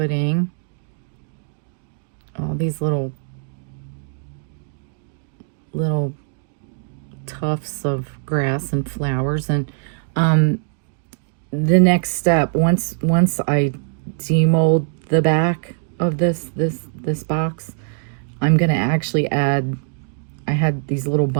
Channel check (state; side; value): silent; left; digital silence